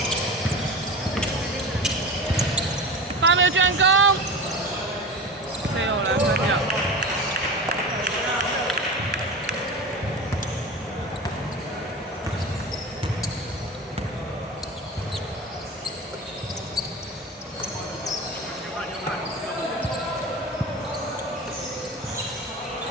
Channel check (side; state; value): both; normal; correlation 0.30